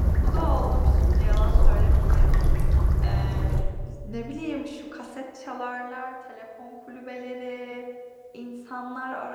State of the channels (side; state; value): both; identical; correlation 1.00